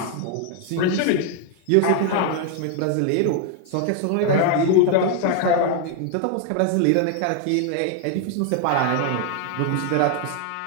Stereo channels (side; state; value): both; different; correlation 0.00